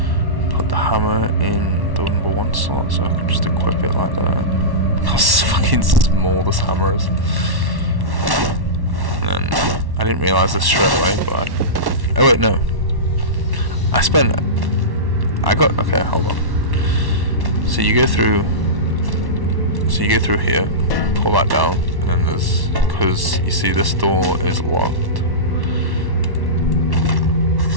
Put the hammer in the number 1 slot so I can just equip it like that. How fucking small this hammer is. And then I didn't realise this straight away, but oh wait, no. Okay, hold on. So you go through here, pull that down, and then there's, because you see this door is locked.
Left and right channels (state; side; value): late; left; 1.1 ms